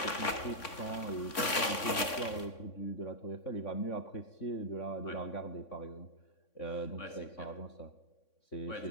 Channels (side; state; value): right; late; 3.6 ms